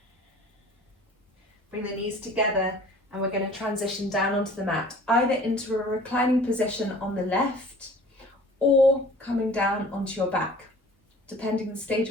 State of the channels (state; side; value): normal; both; correlation 0.47